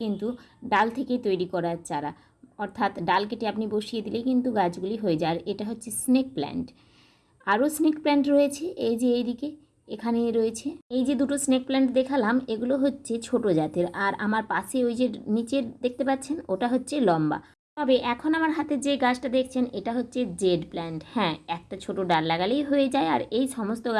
কিন্তু ডাল থেকে তৈরি করার চারা, অর্থাৎ ডাল কেটে আপনি বসিয়ে দিলেই কিন্তু গাছগুলি হয়ে যায়। আর এটা হচ্ছে স্নেক প্ল্যান্ট। আরও স্নেক প্ল্যান্ট রয়েছে, এই যে এইদিকে এখানে রয়েছে। এই যে দুটো স্নেক প্ল্যান্ট দেখালাম, এগুলো হচ্ছে ছোট জাতের। আর আমার পাশে ওই যে নিচের দেখতে পাচ্ছেন, ওটা হচ্ছে লম্বা। তবে এখন আমার হাতে যে গাছটা দেখছেন, এটা হচ্ছে জেড প্ল্যান্ট। হ্যাঁ, একটা ছোট ডাল লাগালেই হয়ে যায়। আর এই সমস্ত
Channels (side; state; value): both; identical; correlation 1.00